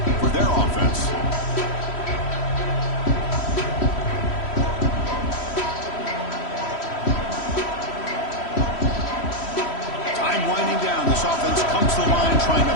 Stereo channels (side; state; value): right; late; 3.1 ms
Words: for their offense. Time winding down. This offense comes to the line trying to